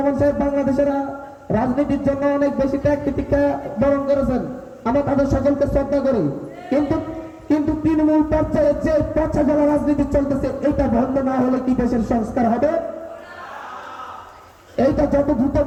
সাহেব বাংলাদেশের রাজনীতির জন্য অনেক বেশি ত্যাগ প্রতিজ্ঞা বরণ করেছেন, আমরা তাদের সকলকে শ্রদ্ধা করি। কিন্তু কিন্তু তৃণমূল পর্যায়ে যে পচা গলা রাজনীতি চলতেছে, এটা বন্ধ না হলে কি দেশের সংস্কার হবে? এইটা যত দ্রুত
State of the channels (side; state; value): both; identical; correlation 1.00